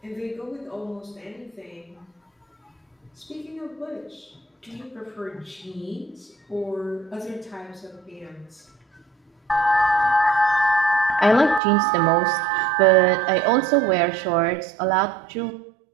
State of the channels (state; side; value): drops out; left; at 11.6 s